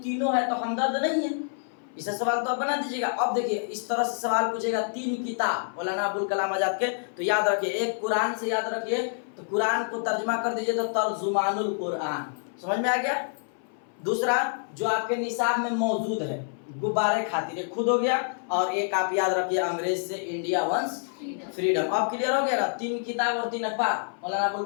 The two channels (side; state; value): right; silent; 60 dB below the other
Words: तीनों है तो हमदर्द नहीं है, इसे सवाल तो आप बना दीजिएगा। अब देखिए इस तरह से सवाल पूछेगा, 3 किताब मौलाना अबुल कलाम आजाद के, तो याद रखिए एक कुरान से याद रखिए, तो कुरान को तर्जुमा कर दीजिए तो तर्जुमानुल कुरान, समझ में आ गया। दूसरा जो आपके निसाब में मौजूद है गुब्बारे खातिर, खुद हो गया। और एक आप याद रखिए अंग्रेज से इंडिया वंस फ्रीडम। अब क्लियर हो गया ना, 3 किताब और 3 अखबार मौलाना अबुल